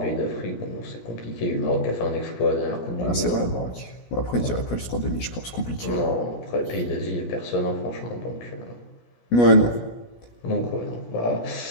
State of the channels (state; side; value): late; right; 17 ms